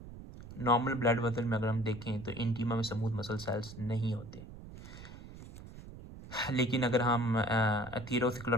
नॉर्मल ब्लड वेसल में अगर हम देखें तो इंटीमा में स्मूथ मसल सेल्स नहीं होते, लेकिन अगर हम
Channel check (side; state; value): right; noise; rumble, 14 dB below the sound